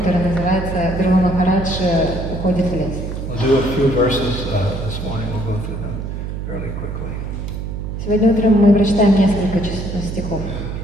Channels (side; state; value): right; noise; hum, 6 dB below the sound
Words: называется «Дрива Махарадж уходит в лес». We'll do a few verses this morning. We'll go through them fairly quickly. Сегодня утром мы прочитаем несколько стихов.